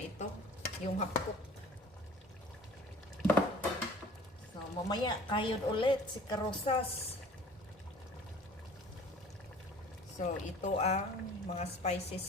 ito. Yung half-cook. So, mamaya, kayod ulit si Karosas. So, ito ang mga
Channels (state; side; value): normal; both; correlation 0.46